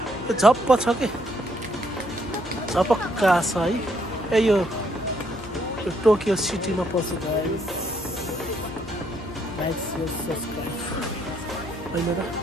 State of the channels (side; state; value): left; noise; hum, 18 dB below the sound